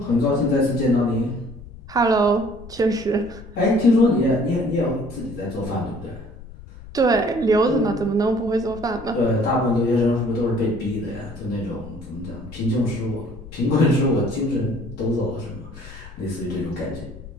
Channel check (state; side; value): noise; left; rumble, 16 dB below the sound